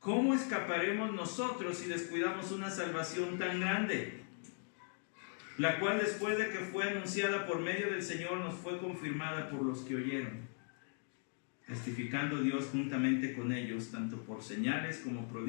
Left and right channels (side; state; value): right; silent; 52 dB below the other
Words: escaparemos nosotros si descuidamos una salvación tan grande? La cual, después de que fue anunciada por medio del Señor, nos fue confirmada por los que oyeron, testificando Dios juntamente con ellos, tanto por señales como